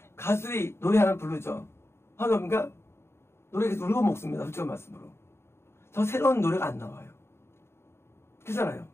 가수들이 노래 하나 부르죠. 하나님과 노래 계속 울고 먹습니다. 솔직한 말씀으로. 더 새로운 노래가 안 나와요. 그렇잖아요.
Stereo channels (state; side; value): late; right; 0.12 ms